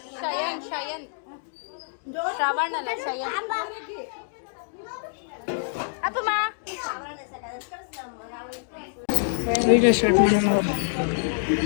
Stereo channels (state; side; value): silent; right; digital silence